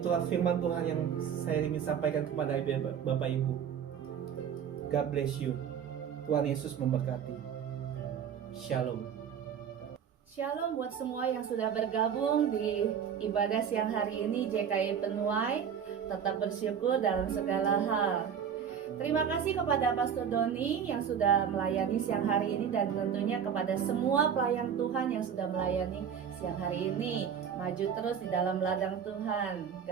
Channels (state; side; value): quieter; left; 7.9 dB